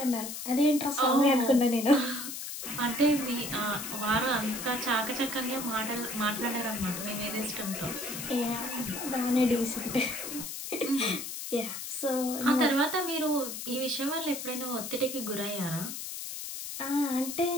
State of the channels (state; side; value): noise; left; hiss, 7 dB below the sound